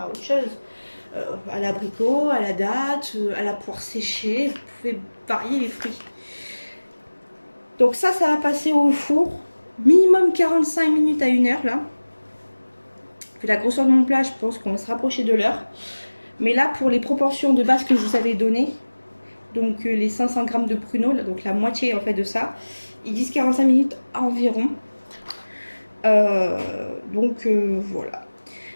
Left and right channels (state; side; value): inverted; both; correlation -1.00